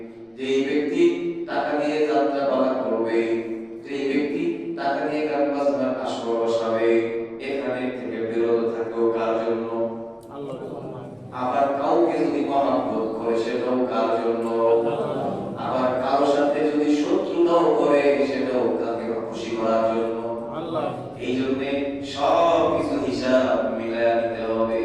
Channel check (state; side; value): identical; both; correlation 1.00